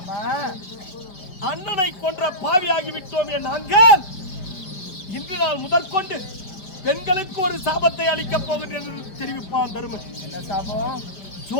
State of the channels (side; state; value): right; late; 5.3 ms